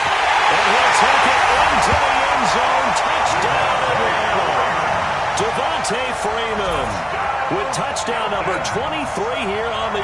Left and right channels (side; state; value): both; identical; correlation 1.00